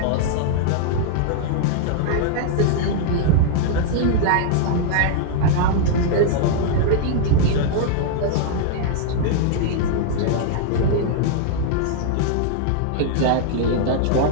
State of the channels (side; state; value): both; different; correlation -0.01